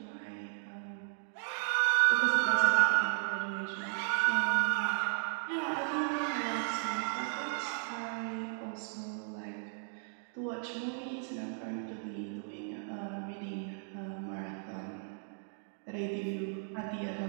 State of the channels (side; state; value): left; silent; digital silence